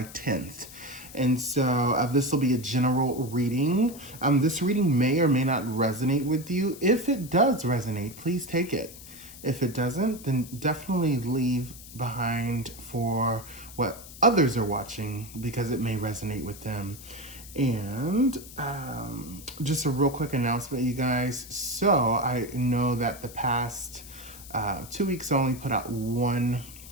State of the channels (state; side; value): noise; left; hiss, 16 dB below the sound